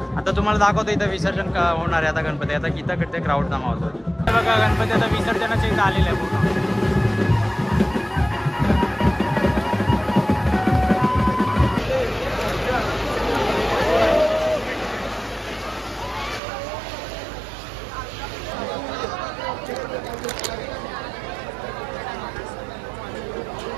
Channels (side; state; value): left; drops out; at 16.4 s